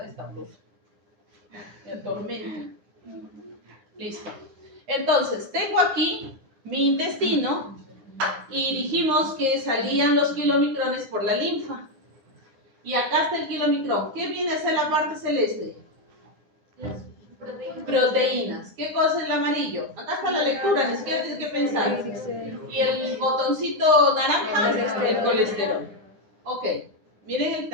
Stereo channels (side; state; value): left; late; 9.7 ms